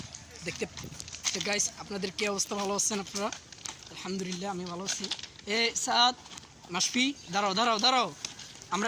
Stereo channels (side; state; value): both; identical; correlation 1.00